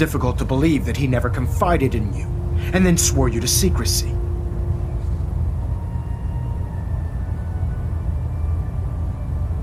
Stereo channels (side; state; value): both; identical; correlation 1.00